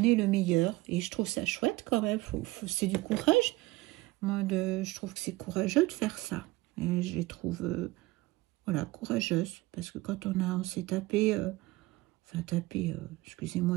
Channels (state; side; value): quieter; left; 20.1 dB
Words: le meilleur. Et je trouve ça chouette quand même. C'est du courage. Moi, je trouve que c'est courageux de faire ça. Et je les trouve voilà, courageuses. Parce que quand on s'est tapé... enfin, taper,